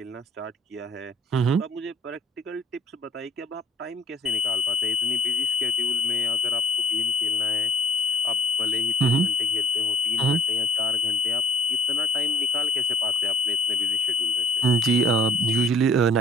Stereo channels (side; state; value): both; normal; correlation 0.59